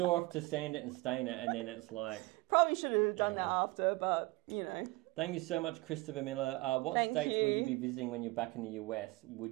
off to sand it and stain it, and then it's Probably should have done that after, but, Thank you so much, Christopher Miller. What states will you be visiting when you're back in the US?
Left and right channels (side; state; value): left; quieter; 22.3 dB